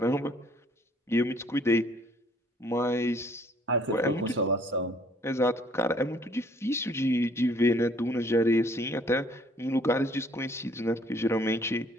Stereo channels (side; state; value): both; normal; correlation 0.60